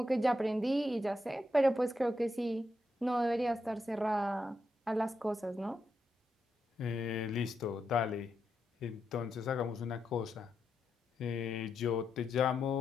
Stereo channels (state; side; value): normal; both; correlation 0.84